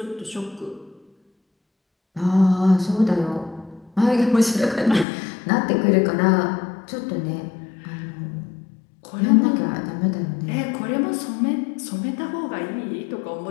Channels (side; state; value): right; drops out; at 5.1 s